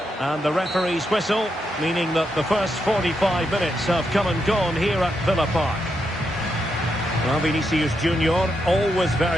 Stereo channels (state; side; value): normal; both; correlation 0.82